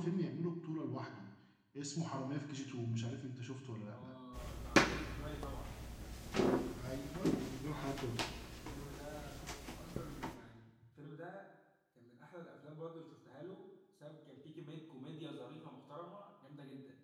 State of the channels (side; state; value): both; identical; correlation 1.00